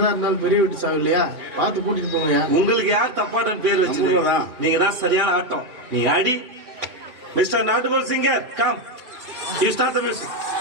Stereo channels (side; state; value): left; late; 2.6 ms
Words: இருந்தாலும் பெரிய வீட்டு சாவு இல்லையா? பார்த்து கூட்டிட்டு போங்க. உங்களுக்கு யார் தப்பாட்டம் பேர் வச்சுருக்கா? நீங்க தான் சரியான ஆட்டம். நீ அடி. மிஸ்டர் நாட்டுபோல் singer come, you start the music.